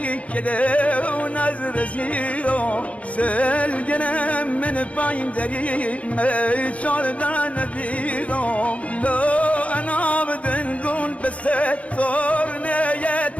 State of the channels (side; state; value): right; late; 0.065 ms